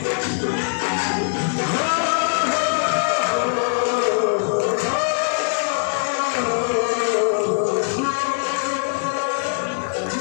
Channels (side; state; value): right; silent; digital silence